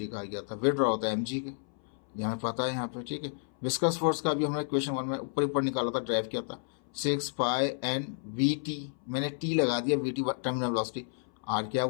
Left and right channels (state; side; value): silent; right; 57 dB below the other